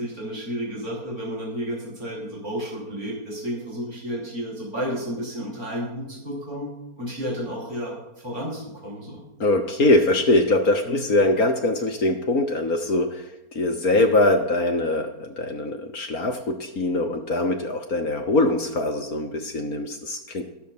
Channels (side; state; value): right; late; 4.4 ms